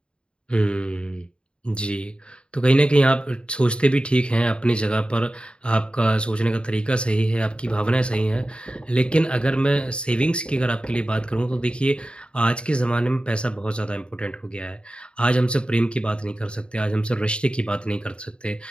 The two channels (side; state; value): right; late; 0.054 ms